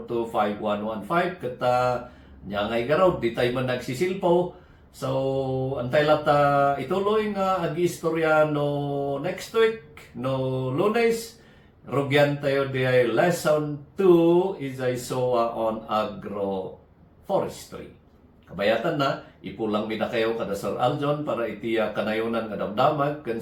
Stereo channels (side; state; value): both; identical; correlation 1.00